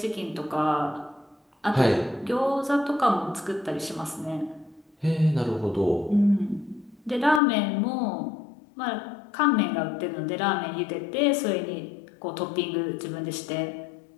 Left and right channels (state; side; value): drops out; right; at 7.4 s